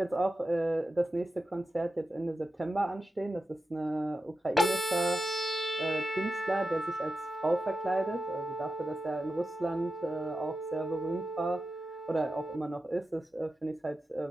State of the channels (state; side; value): normal; both; correlation 0.90